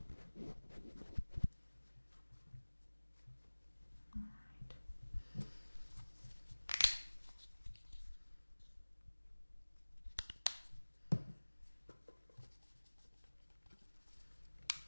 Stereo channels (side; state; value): both; inverted; correlation -1.00